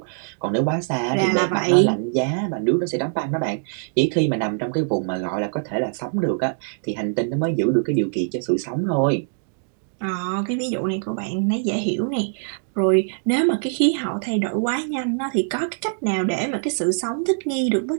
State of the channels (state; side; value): silent; left; digital silence